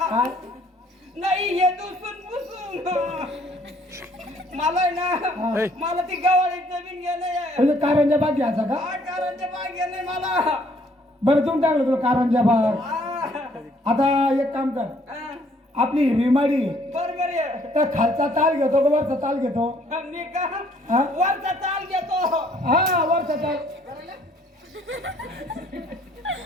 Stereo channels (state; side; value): normal; both; correlation 0.63